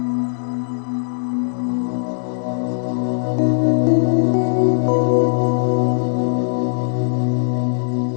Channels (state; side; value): silent; right; digital silence